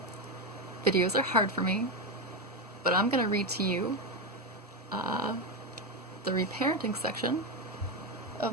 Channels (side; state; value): both; normal; correlation 0.10